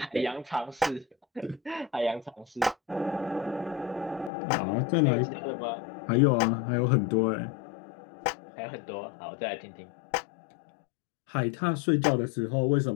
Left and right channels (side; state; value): right; drops out; at 4.3 s